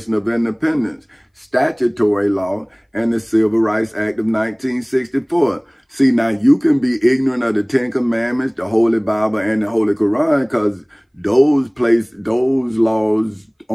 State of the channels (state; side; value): identical; both; correlation 1.00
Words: of Independence, statutory law, and the Civil Rights Act of 1964? See, now you can be ignorant of the Ten Commandments, the Holy Bible, and the Holy Quran, because those laws